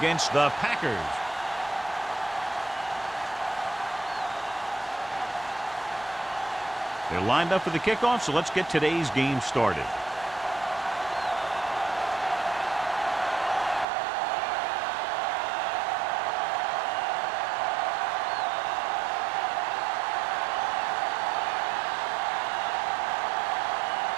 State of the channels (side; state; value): left; drops out; at 13.9 s